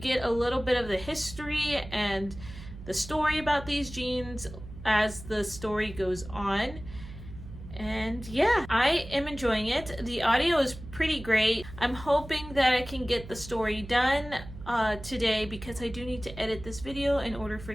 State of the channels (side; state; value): right; noise; hum, 14 dB below the sound